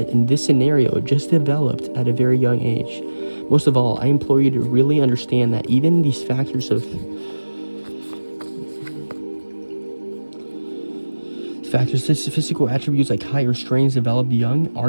this scenario, just developed at a very young age. Most of all, I implore you to really understand that even these factors of physical attributes like height or strengths developed young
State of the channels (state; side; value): inverted; both; correlation -1.00